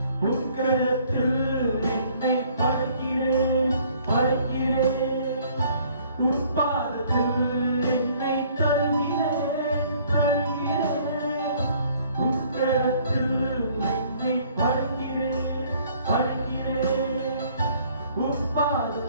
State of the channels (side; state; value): both; inverted; correlation -0.59